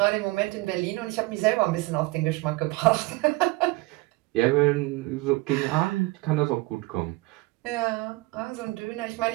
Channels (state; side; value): quieter; left; 22.4 dB